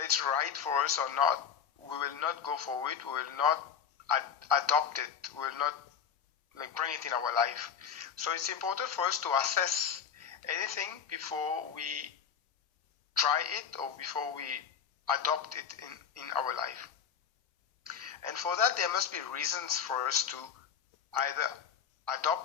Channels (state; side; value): quieter; right; 7.6 dB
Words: right for us or not, we will not go for it, we will not adopt it, we will not bring it in our life. So it's important for us to assess anything before we try it or before we adopt it in our life. And for that there must be reasons for us to either